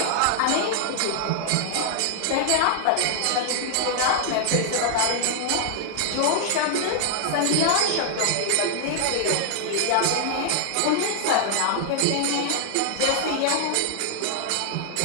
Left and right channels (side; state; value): both; different; correlation 0.00